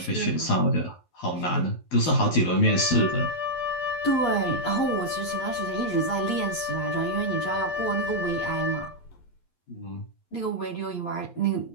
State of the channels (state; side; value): late; right; 11 ms